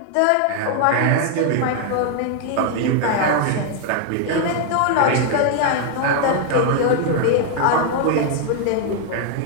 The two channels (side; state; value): both; different; correlation 0.00